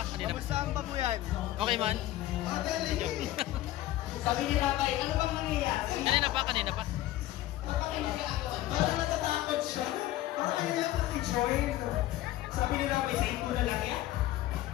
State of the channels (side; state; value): right; quieter; 14.9 dB